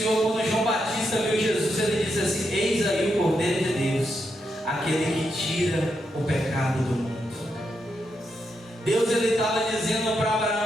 quando João Batista viu Jesus, ele disse assim: eis aí o cordeiro de Deus, aquele que tira o pecado do mundo. Deus, ele estava dizendo para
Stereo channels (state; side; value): normal; both; correlation 0.82